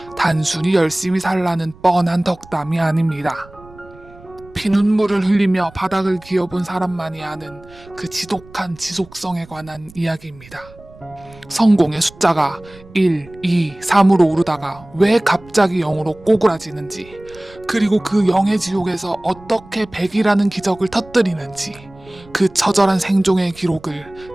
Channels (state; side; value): noise; right; rumble, 23 dB below the sound